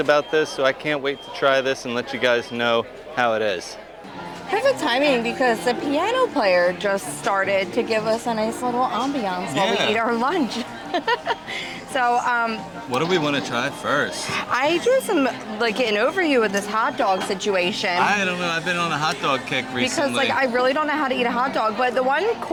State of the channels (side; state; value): both; identical; correlation 1.00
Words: this, so I can't wait to try this and let you guys know how it is. Perfect timing because the piano player just started to give us a nice little ambiance while we eat our lunch. So, what do we want to try first? I drew some, like, getting over you with this hot dog situation. I don't know, I've been on a hot dog kick recently. Because, like, I really don't know how to eat a hot dog, but the one